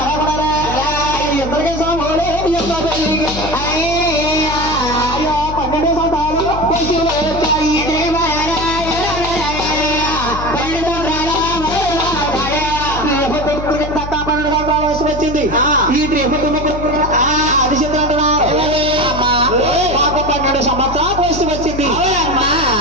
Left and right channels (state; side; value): noise; left; hum, 9 dB below the sound